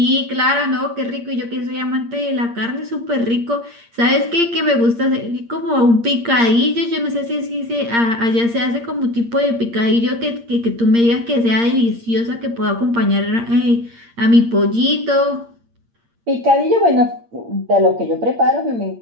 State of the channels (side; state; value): left; late; 8.6 ms